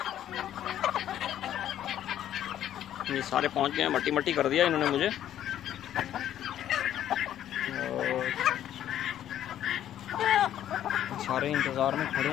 ये सारे पहुंच गए हैं, मट्टी मट्टी कर दिया इन्होंने मुझे। और सारे इंतज़ार में खड़े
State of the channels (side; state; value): right; quieter; 11.3 dB